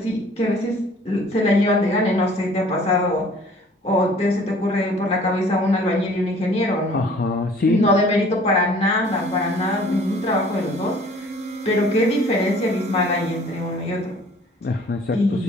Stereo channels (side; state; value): both; normal; correlation 0.53